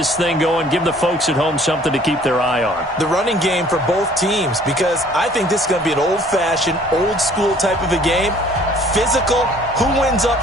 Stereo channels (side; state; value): both; normal; correlation 0.55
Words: thing going, give the folks at home something to keep their eye on. The running game for both teams, because I think this is going to be an old-fashioned, old-school type of a game. Physical, who wins